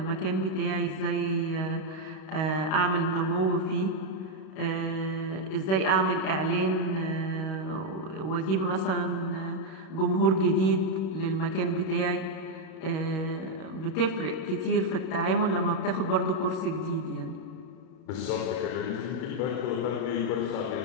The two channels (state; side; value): late; right; 31 ms